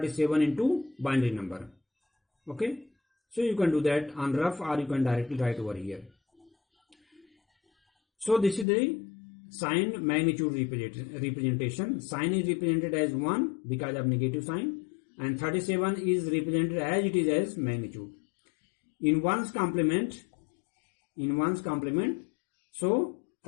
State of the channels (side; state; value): right; drops out; at 8.7 s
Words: into binary number. Okay, so you can do that on rough, or you can directly write over here. So this is the sign magnitude representation. Sign is represented as 1 because of negative sign, and 37 is represented as it is as magnitude. In 1's complement, so